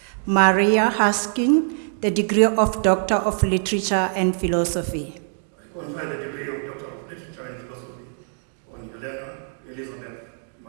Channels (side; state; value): left; silent; 63 dB below the other